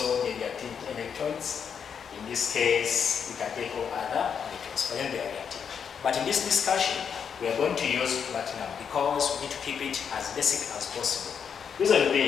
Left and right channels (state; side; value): quieter; right; 7.1 dB